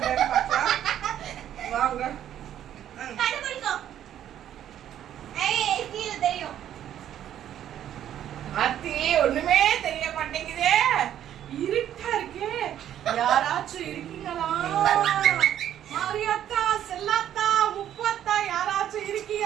பார்க்கலாம். வாங்க. கண்டுபிடிக்கோ. ஏய் கீழ தெரியும். அத்தி ஒண்ணுமே தெரிய மாட்டேங்குதே. இருட்டா இருக்கு. யாராச்சும் இருக்கீங்களா? மாரியாத்தா, செல்லாத்தா, முப்பாத்தா யாராச்சும்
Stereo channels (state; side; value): quieter; left; 10.9 dB